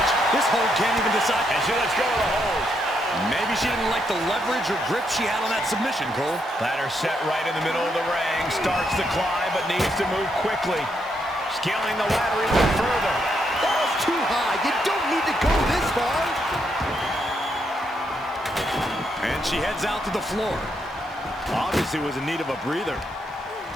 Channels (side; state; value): both; normal; correlation 0.78